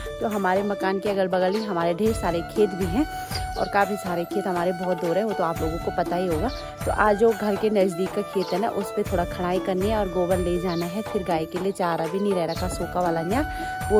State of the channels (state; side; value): identical; both; correlation 1.00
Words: तो हमारे मकान के अगल बगल ही हमारे ढेर सारे खेत भी हैं और काफ़ी सारे खेत हमारे बहुत दूर है, वो तो आप लोगों को पता ही होगा। तो आज जो घर के नज़दीक का खेत है ना, उस पर थोड़ा खड़ाई करनी है और गोबर ले जाना है। फिर गाय के लिए चारा भी नहीं रह रखा, सूखा वाला यहाँ